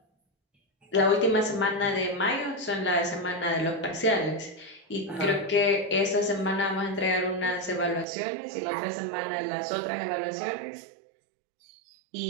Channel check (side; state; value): left; drops out; at 8.1 s